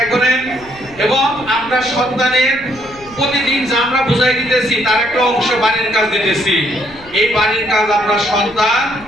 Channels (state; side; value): noise; left; rumble, 22 dB below the sound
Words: করেন এবং আপনার সন্তানের প্রতিদিন যা আমরা বুঝাই দিতেছি তার একটা অংশ বাড়ির কাজ দিতেছি। এই বাড়ির কাজ আপনার সন্তান